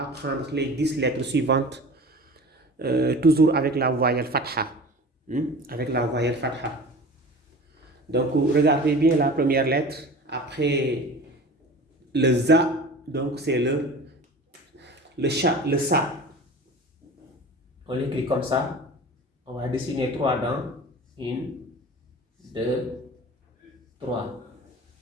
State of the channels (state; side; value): normal; both; correlation 0.38